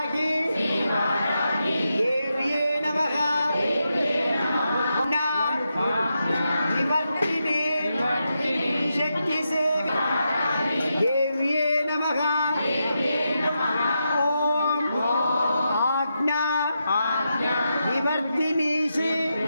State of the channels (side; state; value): both; inverted; correlation -0.86